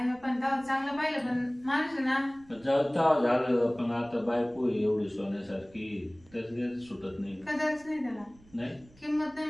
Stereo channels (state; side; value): noise; right; rumble, 26 dB below the sound